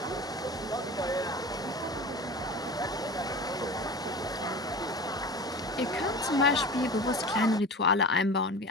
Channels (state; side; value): normal; both; correlation 0.34